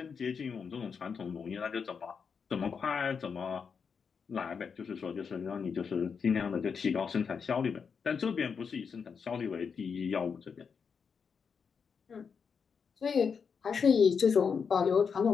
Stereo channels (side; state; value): right; quieter; 6.1 dB